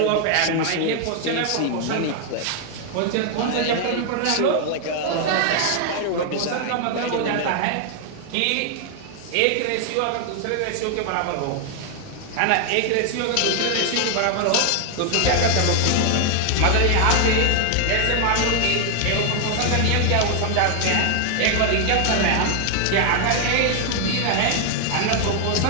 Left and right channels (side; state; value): both; different; correlation 0.00